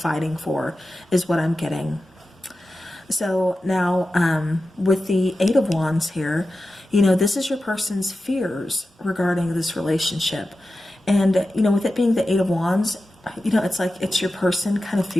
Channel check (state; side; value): normal; both; correlation 0.93